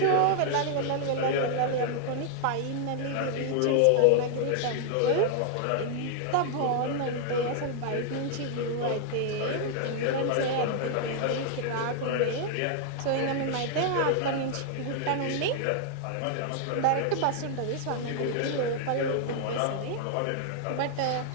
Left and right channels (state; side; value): different; both; correlation 0.00